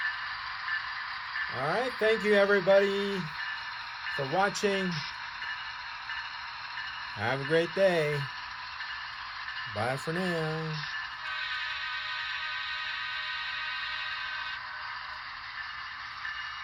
All right, thank you everybody for watching. Have a great day. Bye for now.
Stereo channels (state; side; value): identical; both; correlation 1.00